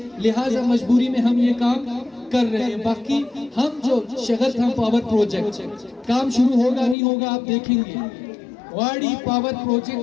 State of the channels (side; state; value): right; drops out; at 7.0 s